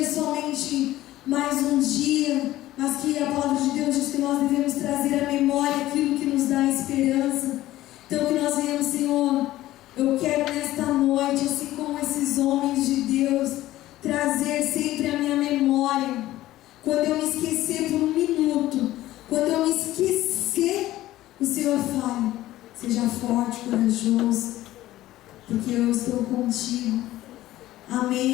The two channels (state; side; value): quieter; right; 15.4 dB